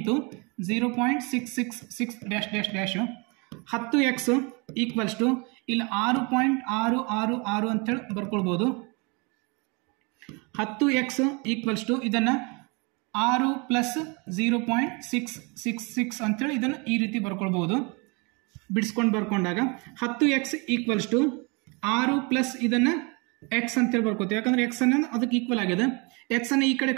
0.666 10x = ಇಲ್ಲಿ 6.666 ಅಂತೇಳಿ ಬರ್ಕೊಳ್ಬಹುದು. 10x = ಇದನ್ನ 6 + 0.666 ಅಂತೇಳಿ ಇದನ್ನು ಈ ರೀತಿ ಬರ್ಕೊಳ್ಬಹುದು. ಬಿಡಿಸ್ಕೊಂಡು ಬರ್ಕೊಂಡಾಗ 10x = 6 ಪ್ಲಸ್ ಇದನ್ನ x ಅಂತೇಳಿ ಬರ್ಕೋತೀವಿ, ಯಾಕಂದ್ರೆ x ಅನ್ನೋದು ಅದಕ್ಕೆ ಈಕ್ವಲ್ ಆಗಿದೆ. x ಅನ್ನು ಈ ಕಡೆ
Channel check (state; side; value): quieter; left; 30.3 dB